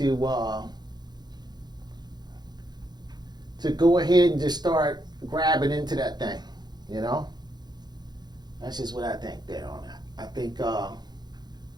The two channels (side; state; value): left; late; 0.20 ms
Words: go ahead and just start grabbing into that thing, you know? That's just what I think there on that. I think